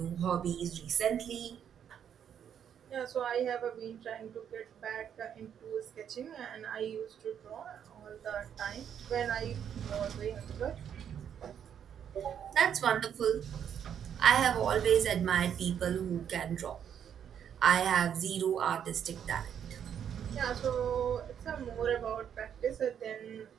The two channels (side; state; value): left; quieter; 8.7 dB